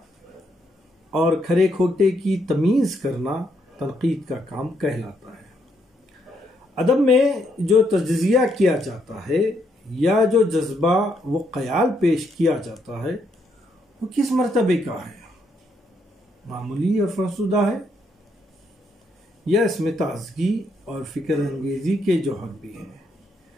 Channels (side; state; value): both; normal; correlation 0.75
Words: اور کھرے کھوٹے کی تمیز کرنا تنقید کا کام کہلاتا ہے۔ ادب میں جو تجزیہ کیا جاتا ہے یا جو جذبہ و خیال پیش کیا جاتا ہے وہ کس مرتبے کا ہے؟ معمولی اور فرسودہ ہے یا اس میں تازگی اور فکر انگیزی کے جوہر بھی ہیں؟